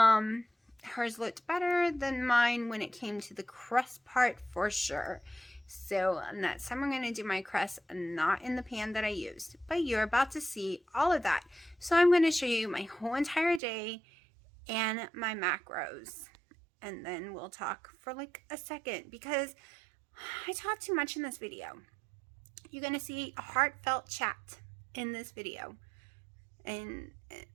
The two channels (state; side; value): drops out; left; at 13.6 s